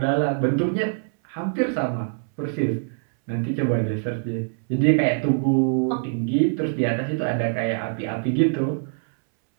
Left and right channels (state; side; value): silent; left; 63 dB below the other